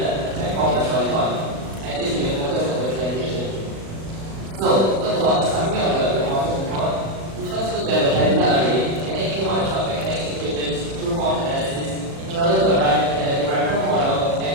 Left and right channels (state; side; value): late; left; 36 ms